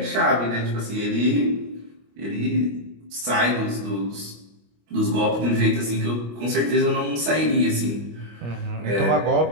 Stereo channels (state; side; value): late; left; 25 ms